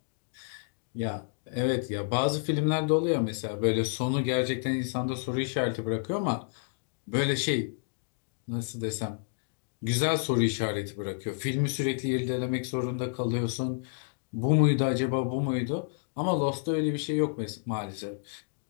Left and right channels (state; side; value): silent; right; digital silence